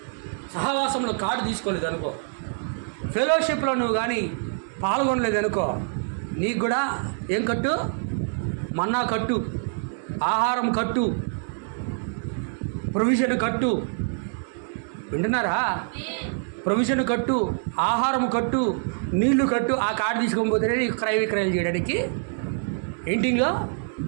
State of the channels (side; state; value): left; silent; digital silence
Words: సహవాసంలో కార్డు తీసుకోలేదు అనుకో, ఫెలోషిప్లో నువ్వు కానీ పాల్గొనలేదు అనుకో, నీకు కూడా ఏం కట్టు? మన్నా కట్టు, ఆహారం కట్టు, ప్రొవిజన్ కట్టు. వింటున్నారా? ప్రొవిజన్ కట్టు, ఆహారం కట్టు, నీళ్లు కట్టు. ఆ కార్డు తీసుకోకపోతేనే నీకు క్రయ విక్రయాలు చేయడానికి ఎయింటింగ్లో